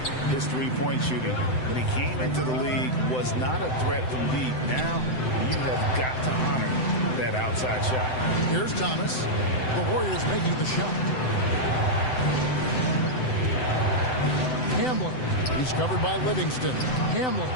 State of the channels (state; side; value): late; right; 7.9 ms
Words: his three-point shooting. When he came into the league, was not a threat from deep. Now, you have got to honor that outside shot. Here's Thomas. The Warriors making the shot. Hamlin. He's covered by Livingston. Hamlin.